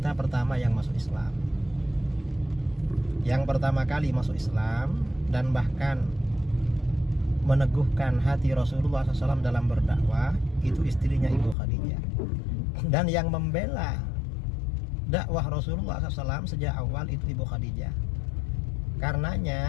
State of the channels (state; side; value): drops out; right; at 11.6 s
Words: pertama yang masuk Islam, yang pertama kali masuk Islam, dan bahkan meneguhkan hati Rasulullah SAW dalam berdakwah, itu istrinya Ibu Khadijah. Dan yang membela dakwah Rasulullah SAW sejak awal itu Ibu Khadijah.